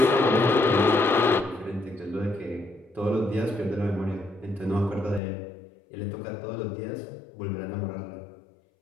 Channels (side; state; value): right; drops out; at 5.2 s